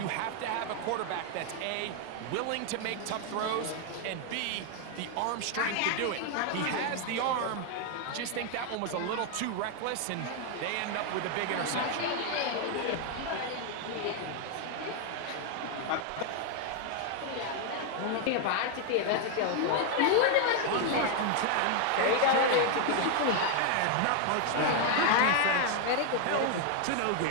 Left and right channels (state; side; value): different; both; correlation 0.00